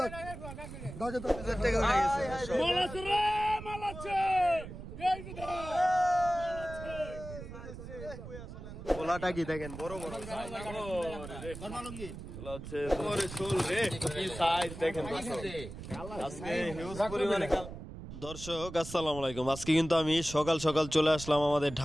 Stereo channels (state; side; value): noise; right; rumble, 11 dB below the sound